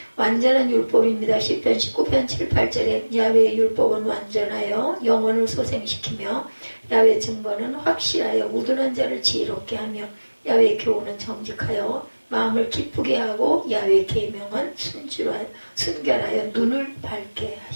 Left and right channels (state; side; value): inverted; both; correlation -1.00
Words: 완전한 율법입니다. 시편 19편 7, 8절에 야훼의 율법은 완전하여 영혼을 소생시키며 야훼 증거는 확실하여 우둔한 자를 지혜롭게 하며 야훼 교훈은 정직하여 마음을 기쁘게 하고 야훼 계명은 순결하여 눈을 밝게